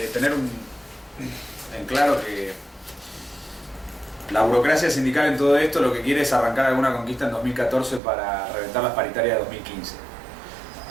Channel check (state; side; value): drops out; left; at 8.0 s